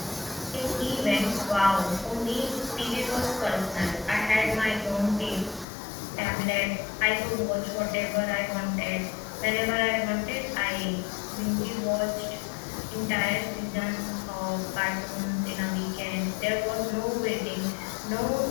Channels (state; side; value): drops out; right; at 5.7 s